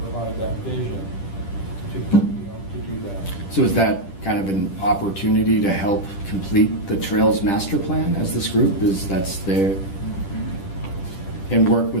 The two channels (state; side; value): late; right; 10 ms